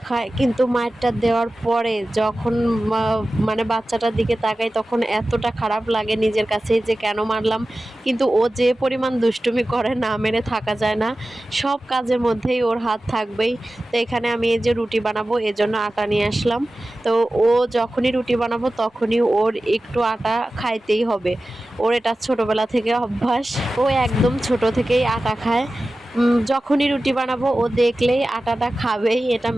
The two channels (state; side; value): normal; both; correlation 0.95